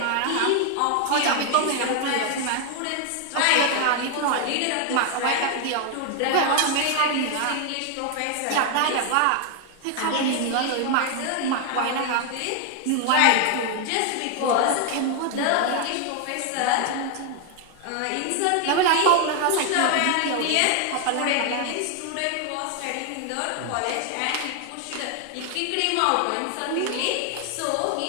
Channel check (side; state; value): both; different; correlation 0.01